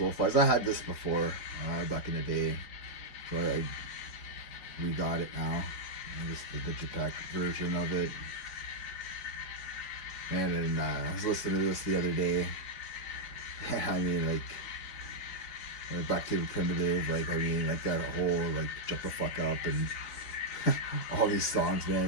I had this before, back in the day, so I re-got it now. And this is the Digipack version of it. And I was listening to this the other day. I mean, like Back to the Primitive, like that whole like Jump the Fuck Up and all these songs,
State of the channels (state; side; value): late; right; 4.7 ms